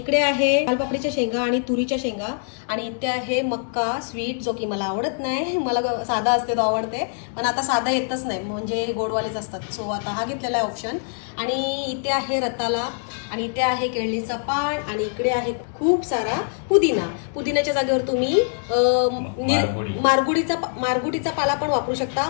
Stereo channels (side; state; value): right; silent; 63 dB below the other